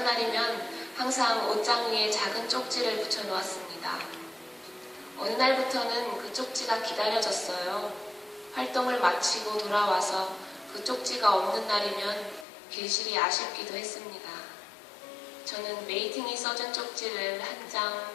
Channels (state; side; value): drops out; right; at 12.5 s